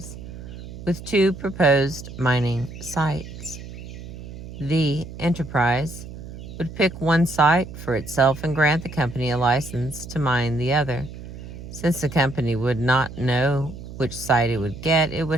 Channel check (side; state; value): right; noise; hum, 12 dB below the sound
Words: with two proposed mining sites. The Enterprise would pick one site for itself and grant the company a license to mine the other. Since the company would not know which site it would get, it